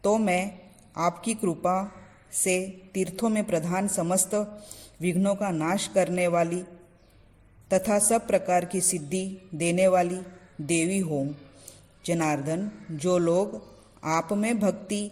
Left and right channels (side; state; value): both; identical; correlation 1.00